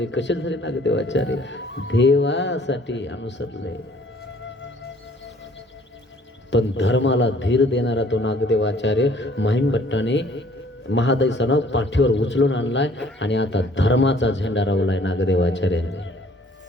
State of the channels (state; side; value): normal; both; correlation 0.56